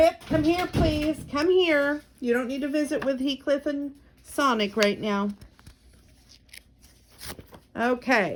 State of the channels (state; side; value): identical; both; correlation 1.00